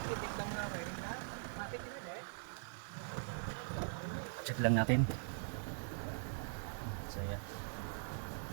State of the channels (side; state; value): left; silent; digital silence